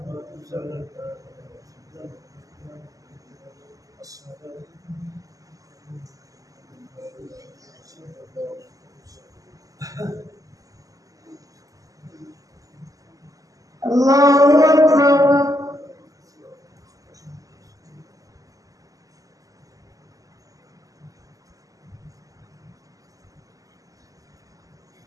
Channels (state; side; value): late; left; 0.17 ms